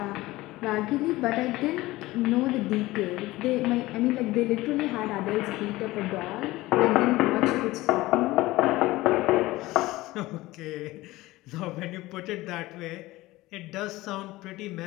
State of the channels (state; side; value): quieter; right; 18.7 dB